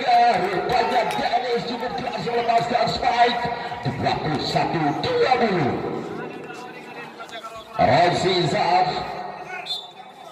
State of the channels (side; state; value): both; identical; correlation 1.00